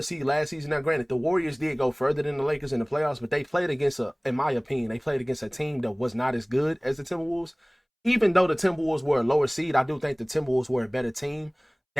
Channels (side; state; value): both; identical; correlation 1.00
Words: seed last season. Now, granted, the Warriors did go further than the Lakers in the playoffs, but they played against in my opinion, they played against a team that was not as good as the Timberwolves. Even though the Timberwolves were a lower seed, I do think the Timberwolves were a better team